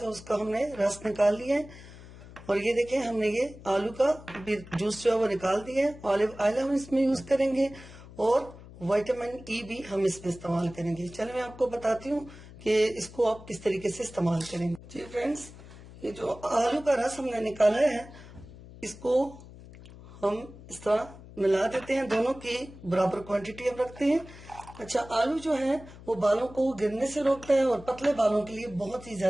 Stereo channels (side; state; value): left; noise; hum, 18 dB below the sound